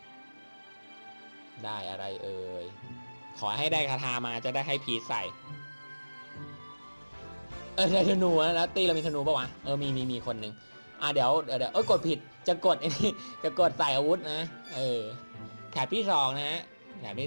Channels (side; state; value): both; inverted; correlation -1.00